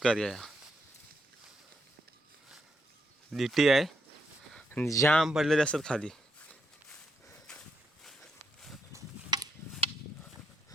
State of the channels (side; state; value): both; normal; correlation 0.79